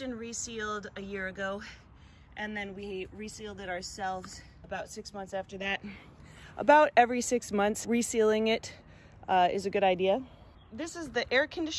and resealed a year ago, and then we resealed it ourselves about 6 months after that. About every 6 months, resealing it is a good idea. This is the air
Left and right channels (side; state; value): both; identical; correlation 1.00